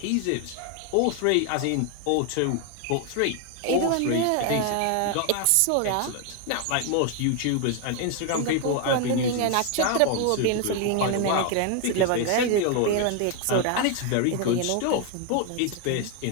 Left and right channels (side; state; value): both; different; correlation 0.01